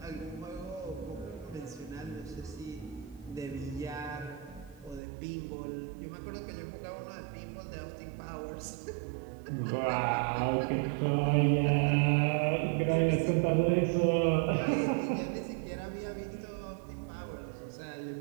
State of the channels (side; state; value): left; drops out; at 5.0 s